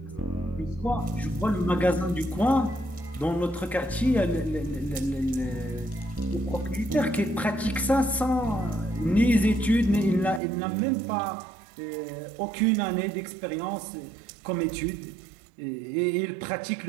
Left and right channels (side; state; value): left; drops out; at 10.4 s